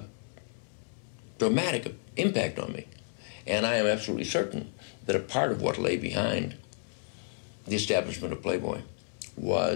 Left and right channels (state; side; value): silent; right; digital silence